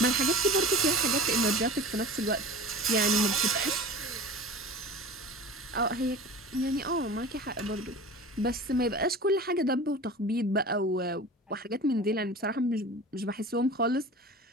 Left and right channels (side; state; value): both; normal; correlation 0.37